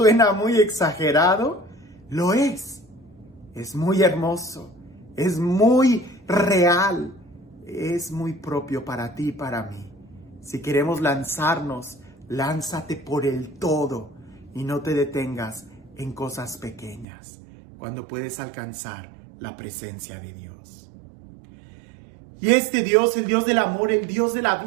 muy exagerado? Lo es. Es muy hermoso. Es muy real. Es muy propio para ti y para mí. Si queremos lanzarnos, lánzate por el todo y no te detengas en cosas pequeñas cuando puedes alcanzar la presencia de Dios. Y este Dios, el Dios del amor, el Dios de la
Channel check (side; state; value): left; drops out; at 17.1 s